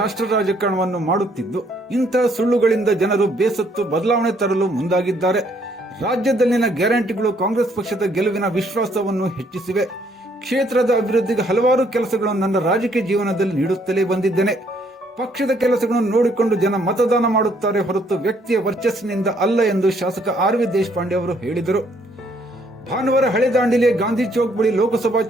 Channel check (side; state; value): both; normal; correlation 0.67